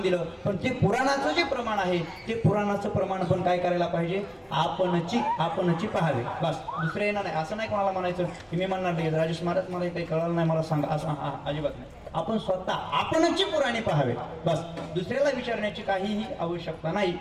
दिलं. पण ते पुराणाचं जे प्रमाण आहे ते पुराणाचं प्रमाण पण काय करायला पाहिजे आपणची पहावे. बस दुसरे येणार नाही. असं नाही कोणाला म्हणायचं की मी म्हणणार नाही राजेश महाराज मला काही कळलं नाही मला सांगा असं अजिबात नाही. आपण स्वतः आपणची पुराणे पहावे. बस दुसऱ्याला विचारण्याची काहीही आवश्यकता नाही.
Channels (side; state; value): both; identical; correlation 1.00